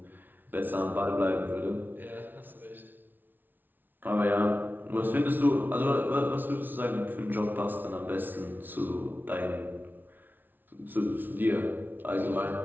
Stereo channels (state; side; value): late; left; 0.090 ms